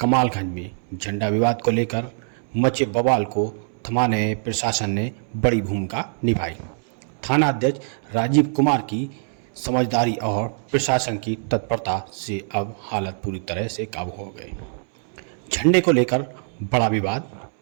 में झंडा विवाद को लेकर मचे बवाल को थमाने में प्रशासन ने बड़ी भूमिका निभाई। थाना अध्यक्ष राजीव कुमार की समझदारी और प्रशासन की तत्परता से अब हालत पूरी तरह से काबू हो गई। झंडे को लेकर बड़ा विवाद,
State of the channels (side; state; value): left; silent; 63 dB below the other